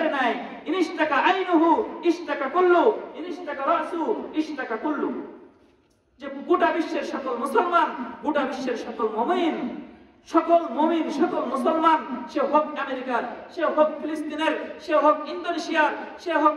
নাই। ইনিশতাকা আইনুহু ইশতাকা কুল্লু, ইনিশতাকা রাসু ইশতাকা কুল্লু। যে গোটা বিশ্বের সকল মুসলমান, গোটা বিশ্বের সকল মুমিন, সকল মুসলমান, সে হোক আমেরিকার, সে হোক ফিলিস্তিনের, সে হোক ইন্দোনেশিয়ার, সে হোক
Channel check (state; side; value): identical; both; correlation 1.00